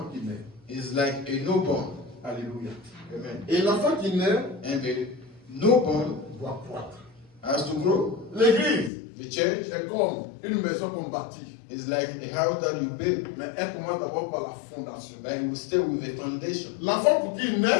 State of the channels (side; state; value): right; drops out; at 8.9 s